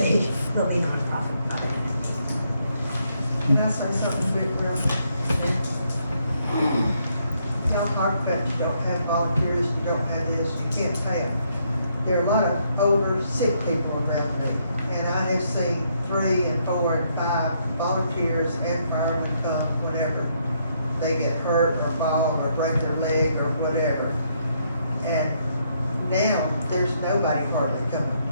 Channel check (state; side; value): inverted; both; correlation -0.73